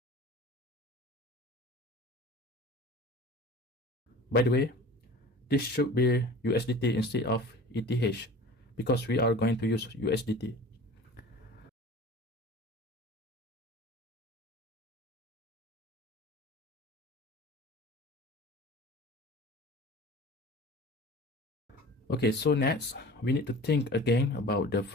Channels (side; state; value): both; normal; correlation 0.40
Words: By the way, this should be USDT instead of ETH because we are going to use USDT. Okay, so next, we need to think again about the